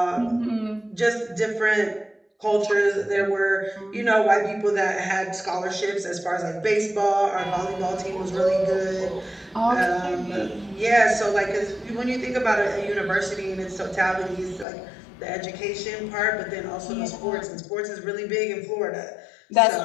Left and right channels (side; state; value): right; drops out; at 14.7 s